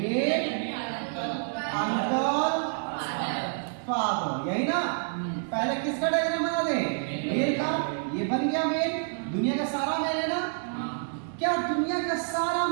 uncle, father, यही ना। पहले किसका डायग्राम बना दे? मेल का। ये बन गया मेल, दुनिया का सारा मेल है ना। क्या दुनिया का सारा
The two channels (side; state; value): left; silent; 59 dB below the other